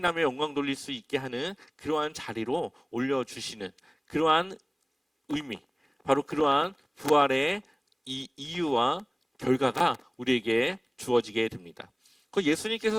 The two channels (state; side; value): identical; both; correlation 1.00